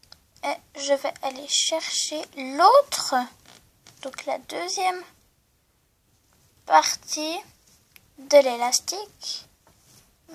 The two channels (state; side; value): identical; both; correlation 1.00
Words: Et je vais aller chercher l'autre, donc la deuxième partie de l'élastique.